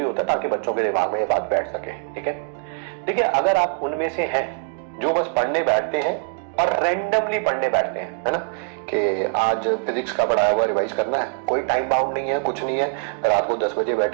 होता है ताकि बच्चों के दिमाग में ये बात बैठ सके। ठीक है, देखिए अगर आप उनमें से हैं जो बस पढ़ने बैठते हैं और रैंडमली पढ़ने बैठते हैं, है ना, कि आज फिजिक्स का पढ़ाया हुआ रिवाइज करना है, कोई टाइम बाउंड नहीं है, कुछ नहीं है, रात को 10 बजे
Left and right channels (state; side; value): silent; left; digital silence